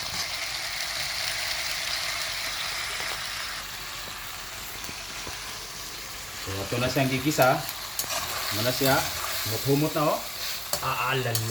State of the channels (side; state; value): left; noise; hum, 23 dB below the sound